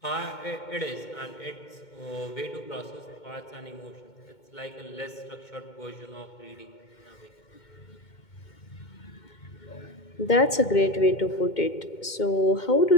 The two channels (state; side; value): late; right; 2.2 ms